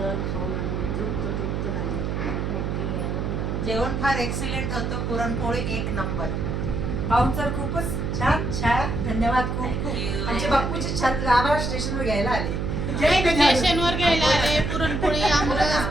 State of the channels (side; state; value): right; noise; hum, 1 dB below the sound